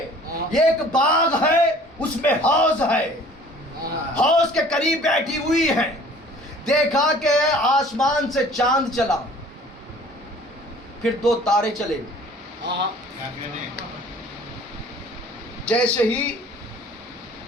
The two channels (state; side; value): normal; both; correlation 0.50